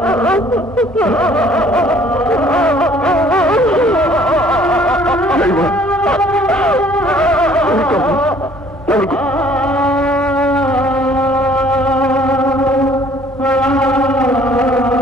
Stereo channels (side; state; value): both; normal; correlation 0.57